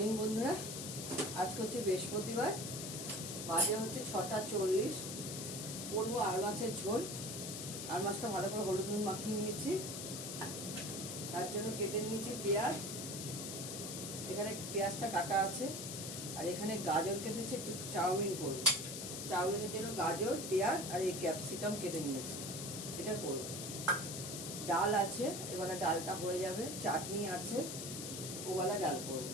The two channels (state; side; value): noise; left; hiss, 6 dB below the sound